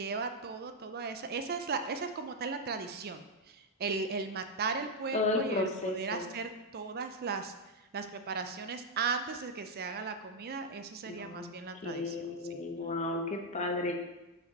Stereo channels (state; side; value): normal; both; correlation 0.00